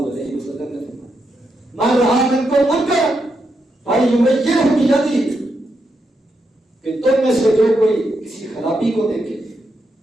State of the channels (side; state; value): both; normal; correlation 0.83